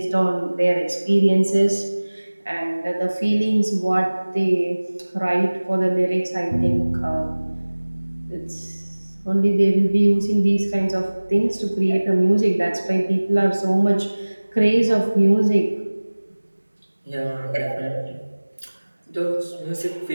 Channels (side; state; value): both; inverted; correlation -1.00